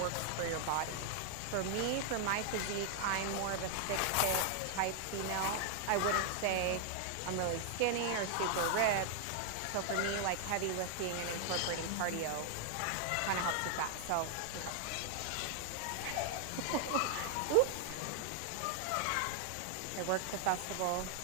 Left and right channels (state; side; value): different; both; correlation 0.00